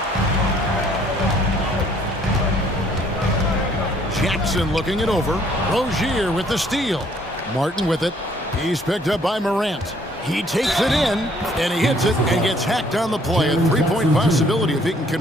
Jackson looking it over. Rozier with the steal. Martin with it. He's picked up by Morant. He takes it in, and he hits it and gets hacked on the play. A three-point possibility if he can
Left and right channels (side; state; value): both; normal; correlation 0.62